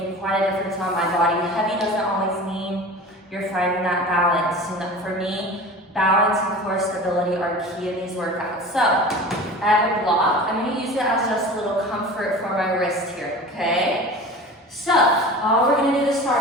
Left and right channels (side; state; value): both; normal; correlation 0.36